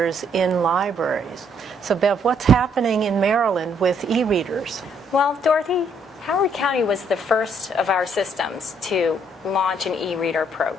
in libraries. So Bev, what's happening in Maryland with e-readers? Well, Dorothy, Howard County was the first of our systems to launch an e-reader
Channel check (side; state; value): both; normal; correlation 0.68